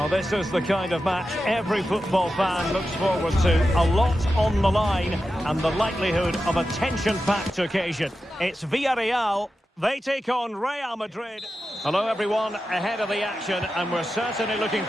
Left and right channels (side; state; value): both; normal; correlation 0.91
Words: this is the kind of match every football fan looks forward to. A lot on the line and the likelihood of a tension-packed occasion. It's Villarreal They take on Real Madrid. Hello everyone, ahead of the action, and we're certainly looking